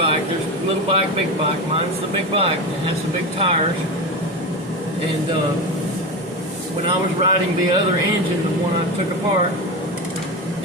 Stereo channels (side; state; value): both; normal; correlation 0.20